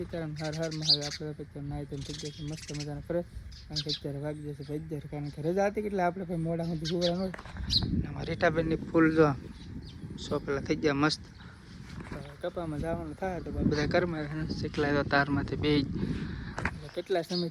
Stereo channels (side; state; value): both; identical; correlation 1.00